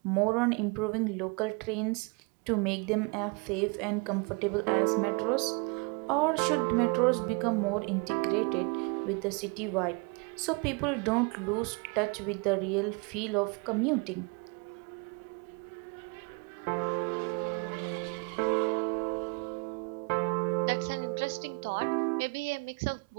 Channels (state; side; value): quieter; left; 31.6 dB